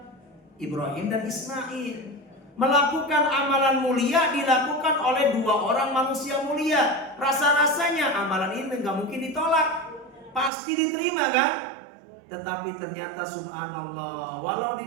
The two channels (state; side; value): drops out; left; at 10.5 s